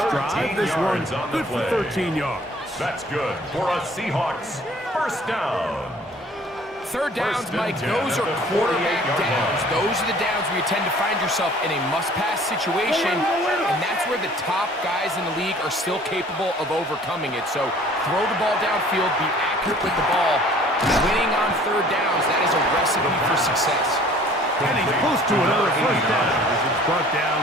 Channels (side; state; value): both; normal; correlation 0.52